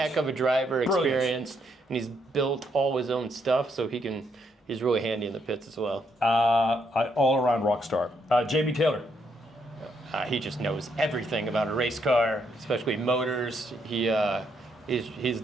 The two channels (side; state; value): both; normal; correlation 0.75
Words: of a driver, experienced, and he's built all his own stuff, so he's really handy in the pits as well. All-around rock star. Jamie Taylor. He just knows everything about a race car, especially motors. He's